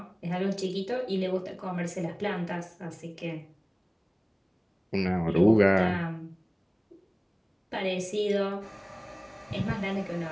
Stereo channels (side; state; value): both; identical; correlation 1.00